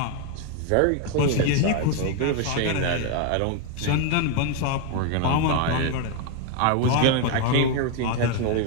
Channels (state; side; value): different; both; correlation 0.01